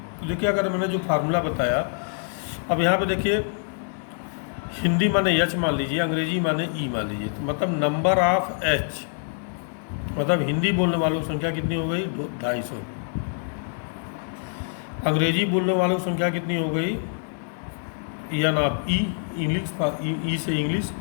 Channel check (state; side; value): silent; right; 62 dB below the other